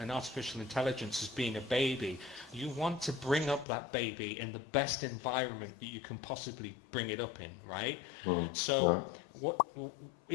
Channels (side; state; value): right; drops out; at 3.7 s